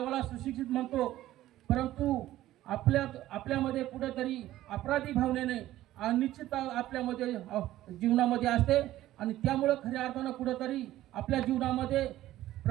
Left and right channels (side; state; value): left; quieter; 14.6 dB